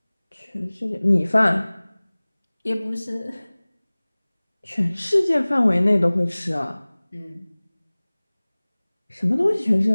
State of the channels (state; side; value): inverted; both; correlation -1.00